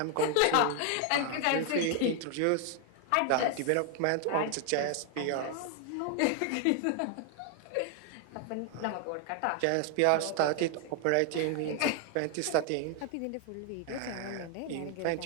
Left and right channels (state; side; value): different; both; correlation 0.00